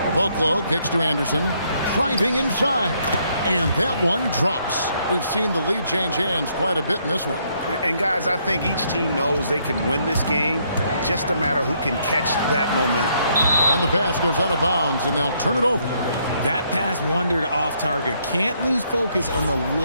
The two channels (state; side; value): inverted; both; correlation -0.71